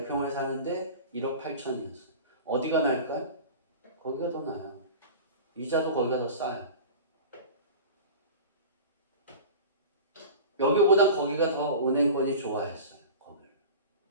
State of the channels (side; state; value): both; inverted; correlation -0.35